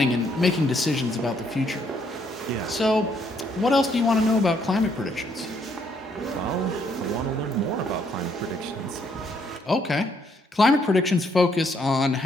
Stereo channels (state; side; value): normal; both; correlation 0.70